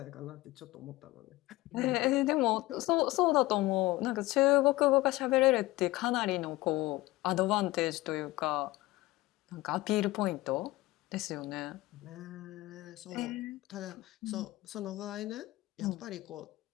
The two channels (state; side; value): quieter; right; 19.0 dB